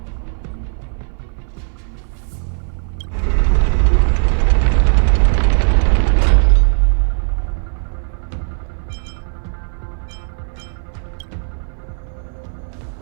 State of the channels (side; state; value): left; silent; 60 dB below the other